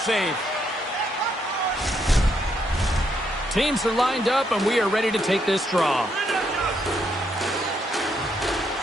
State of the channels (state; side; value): normal; both; correlation 0.75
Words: Teams are lined up, and we are ready to take this draw.